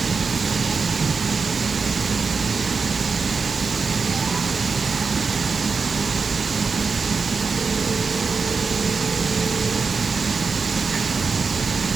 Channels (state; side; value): quieter; left; 4.9 dB